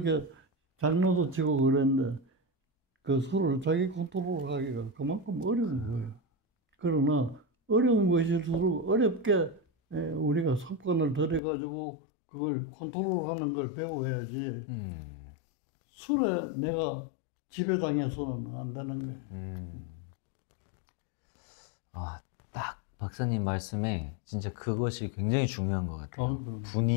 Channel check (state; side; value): drops out; right; at 11.4 s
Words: 장난도 치고 그랬는데 그 술을 자기 컨트롤하기가 그만큼 어려운 거예요. 그러나 어려운 것일수록 어렵게 우리가 습관을 들여가지고 그걸 컨트롤하는 걸 배워야지 술에 내가 지배당해서는 안 되는 거예요. 딱 박사님 말씀에 진짜 그것이 굉장히 중요한 것 같아요.